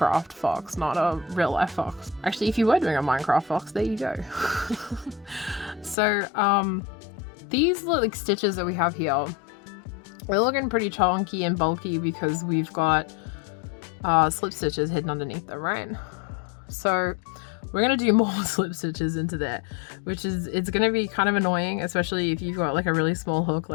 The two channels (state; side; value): drops out; right; at 6.0 s